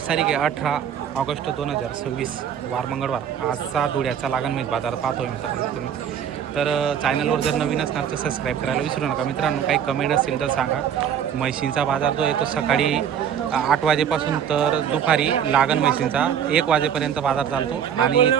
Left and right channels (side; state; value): left; quieter; 8.7 dB